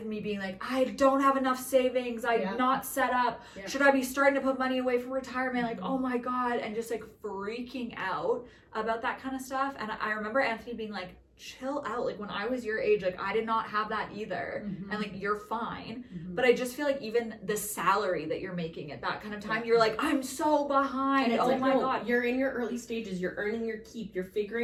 me being like, I don't have enough savings, I'm not set up, should I be starting to put money away for retirement, like, oh my god, and just like freaking out about that kind of stuff. And I remember Anthony being like, chill out, like when I was your age, like I did not have that either, and like you're fine. But I just feel like even the salary that you're making at that kind of time, you're like, I'm so behind, and it's oh like, my no, god, you're in your early stages, you're earning your keep, you're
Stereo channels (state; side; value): identical; both; correlation 1.00